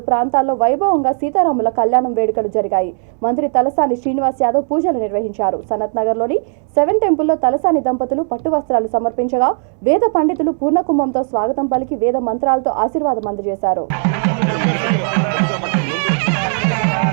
ప్రాంతాల్లో వైభవంగా సీతారాముల కళ్యాణం వేడుకలు జరిగాయి. మంత్రి తలసాని శ్రీనివాస్ యాదవ్ పూజలు నిర్వహించారు. సనత్ నగర్లోని 7 టెంపుల్లో తలసాని దంపతులు పట్టు వస్త్రాలు సమర్పించగా వేద పండితులు పూర్ణకుంభంతో స్వాగతం పలికి వేద మంత్రాలతో ఆశీర్వాదం అందజేశారు.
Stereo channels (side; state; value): left; silent; 68 dB below the other